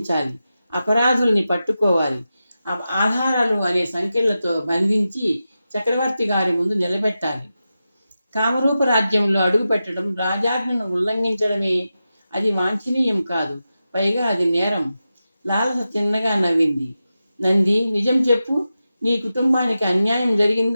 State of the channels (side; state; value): both; inverted; correlation -0.92